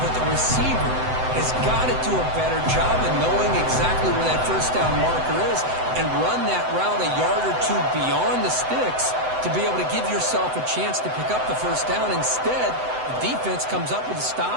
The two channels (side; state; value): left; late; 7.9 ms